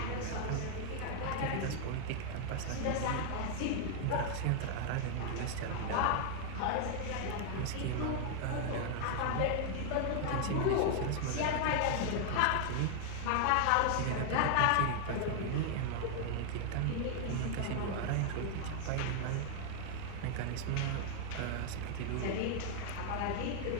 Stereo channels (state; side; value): different; both; correlation 0.00